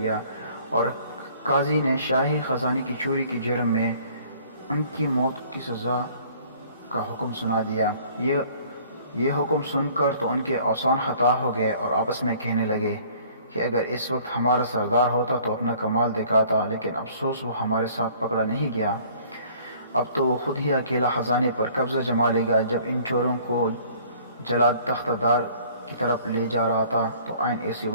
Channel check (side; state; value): both; inverted; correlation -0.54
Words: اور قاضی نے شاہی خزانے کی چوری کے جرم میں ان کی موت کی سزا کا حکم سنا دیا۔ یہ حکم سن کر تو ان کے اعصان خطا ہو گئے اور آپس میں کہنے لگے کہ اگر اس وقت ہمارا سردار ہوتا تو اپنا کمال دکھاتا، لیکن افسوس وہ ہمارے ساتھ پکڑا نہیں گیا۔ اب تو وہ خود ہی اکیلا خزانے پر قبضہ جما لے گا۔ جب ان چوروں کو جلاد تختہ دار کی طرف لے جا رہا تھا تو عین اسی